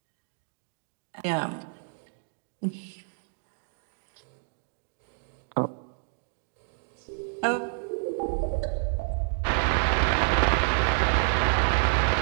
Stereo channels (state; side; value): silent; left; digital silence